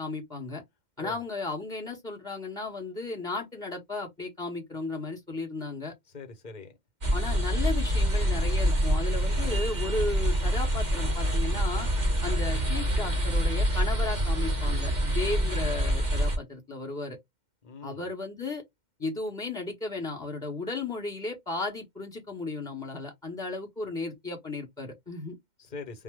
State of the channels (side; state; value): left; late; 2.1 ms